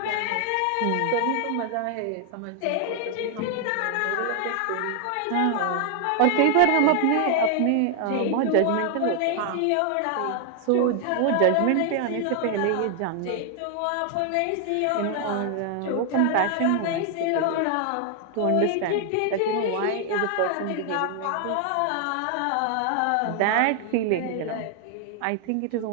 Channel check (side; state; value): both; different; correlation 0.00